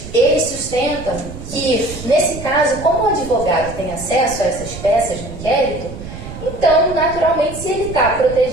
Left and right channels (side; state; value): right; noise; rumble, 12 dB below the sound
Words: ele sustenta que, nesse caso, como o advogado tem acesso a essas peças do inquérito, então, naturalmente, se ele está